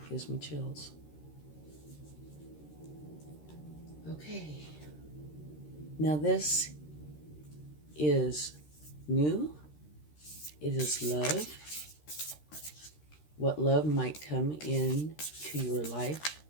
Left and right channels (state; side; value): late; right; 13 ms